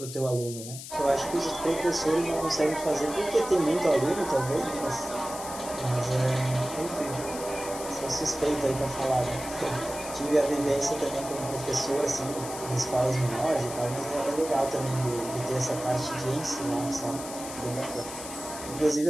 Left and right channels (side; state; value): left; noise; hiss, 11 dB below the sound